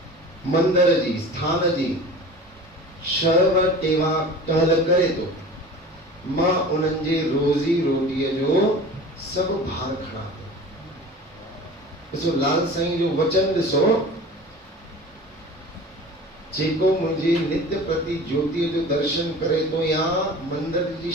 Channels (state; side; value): normal; both; correlation 0.38